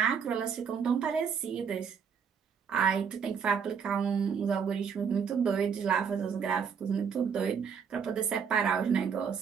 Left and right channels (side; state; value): left; quieter; 6.7 dB